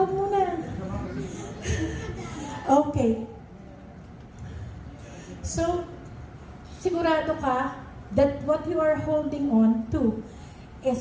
muna. Okay. So, sigurado ka that what you are holding on to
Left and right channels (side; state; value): both; identical; correlation 1.00